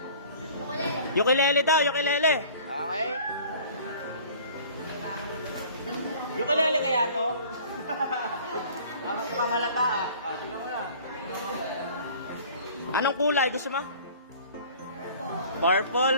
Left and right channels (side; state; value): both; inverted; correlation -0.48